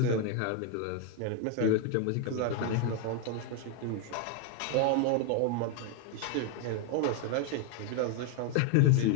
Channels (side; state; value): both; different; correlation 0.01